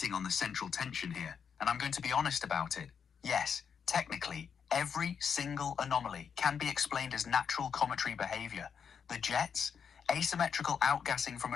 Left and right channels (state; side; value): quieter; right; 7.0 dB